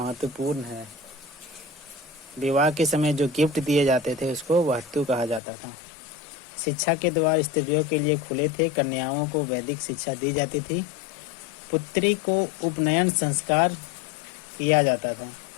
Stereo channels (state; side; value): drops out; right; at 5.4 s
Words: है। विवाह के समय जो गिफ्ट दिए जाते थे उसको वहत्तु कहा जाता था। शिक्षा के द्वार स्त्रियों के लिए खुले थे। कन्याओं को वैदिक शिक्षा दी जाती थी। पुत्री को उपनयन संस्कार किया जाता था।